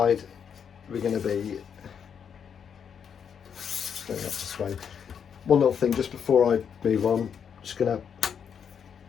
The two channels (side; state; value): right; quieter; 7.5 dB